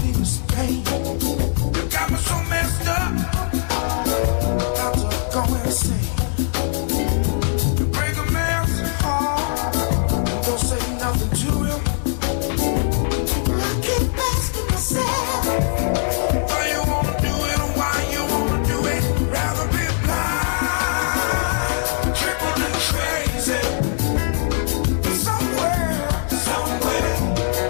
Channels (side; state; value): right; silent; digital silence